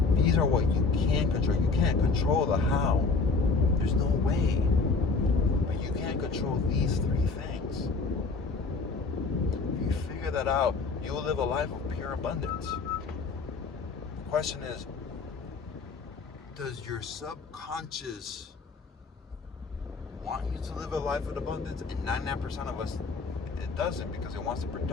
These are what you can control. You can't control the how. There's no way. But you can control these three things. If you figure that out, you will live a life of pure abundance. The question is, does your subconscious want you to live a life of abundance? And 99% of us, it doesn't, because it wants to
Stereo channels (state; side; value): quieter; right; 4.4 dB